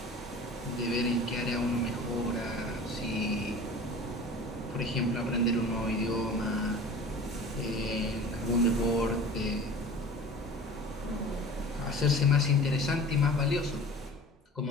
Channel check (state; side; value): normal; both; correlation 0.40